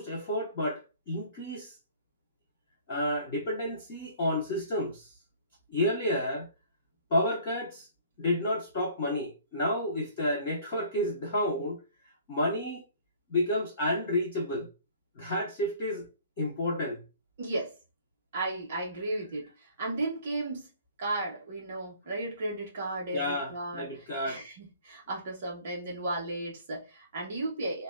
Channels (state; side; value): inverted; both; correlation -0.53